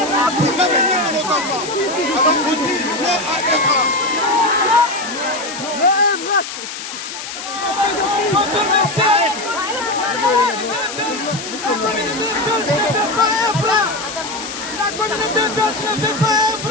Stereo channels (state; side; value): noise; left; hiss, 9 dB below the sound